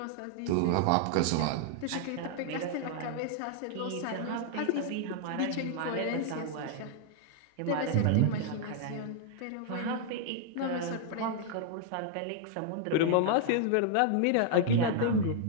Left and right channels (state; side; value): different; both; correlation -0.01